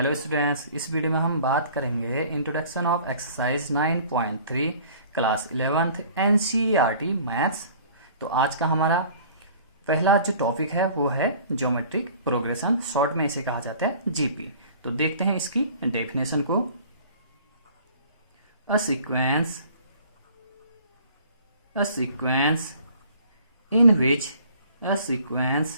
students, इस video में हम बात करेंगे introduction of exercise 9.3 class 11th NCERT maths. तो आज का हमारा पहला जो टॉपिक है वो है ज्योमेट्रिक प्रोग्रेशन, शॉर्ट में इसे कहा जाता है जीपी। तो देखते हैं इसकी डेफिनेशन को। A sequence in which a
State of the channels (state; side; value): inverted; both; correlation -0.50